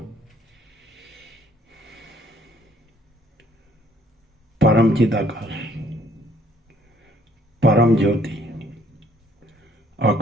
પરમ ચિદાકાશ, પરમ જ્યોતિ,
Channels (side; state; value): both; normal; correlation 0.61